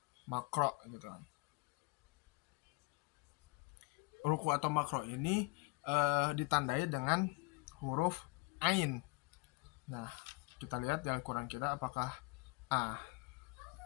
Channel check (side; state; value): right; quieter; 27.0 dB